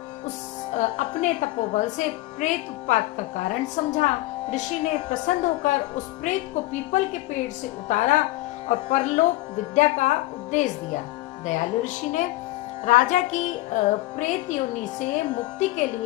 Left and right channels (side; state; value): right; quieter; 18.6 dB